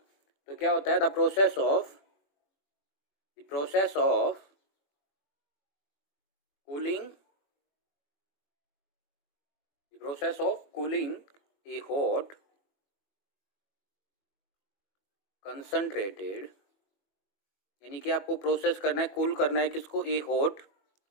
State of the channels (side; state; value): right; late; 21 ms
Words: तो क्या होता है, the process of cooling, process of cooling A hot concentrated, यानी कि आपको प्रोसेस करना है, कूल करना है किसको, ए हॉट।